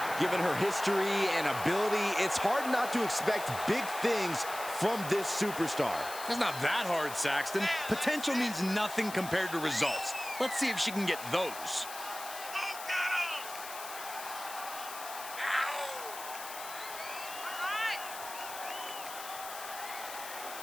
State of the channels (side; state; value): left; noise; hiss, 11 dB below the sound